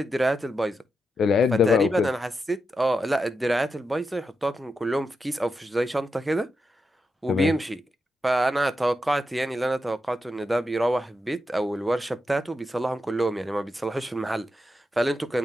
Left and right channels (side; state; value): both; normal; correlation 0.87